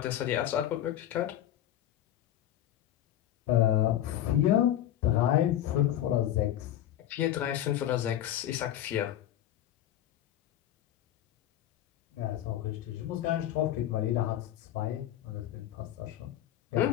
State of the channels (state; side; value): quieter; right; 12.0 dB